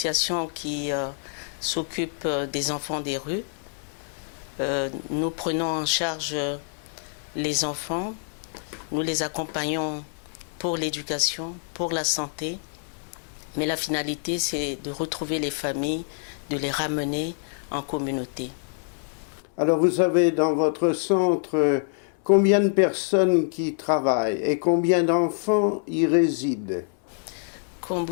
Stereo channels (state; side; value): silent; right; 60 dB below the other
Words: qui s'occupe des enfants des rues. Nous prenons en charge les enfants, nous les accompagnons pour l'éducation, pour la santé, mais la finalité c'est de retrouver les familles, de les ramener en communauté. Alors vous avez dans votre centre combien de personnes qui travaillent et combien d'enfants y résident? Comme